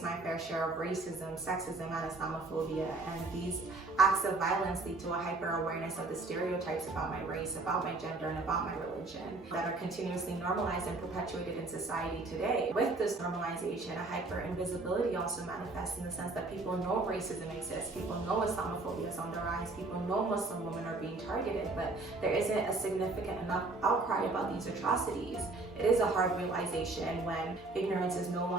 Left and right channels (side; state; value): left; quieter; 3.3 dB